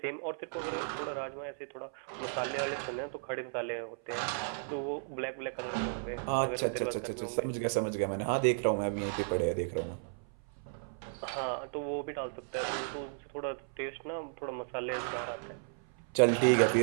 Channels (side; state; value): left; silent; 55 dB below the other